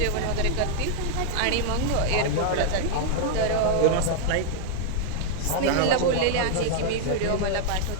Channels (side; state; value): both; different; correlation -0.01